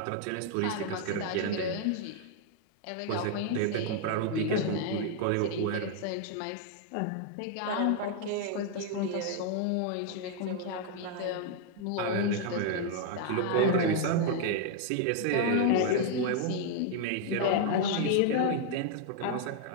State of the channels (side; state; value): both; different; correlation 0.00